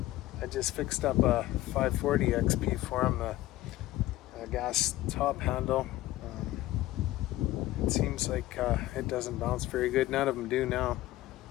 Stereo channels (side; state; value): right; quieter; 16.0 dB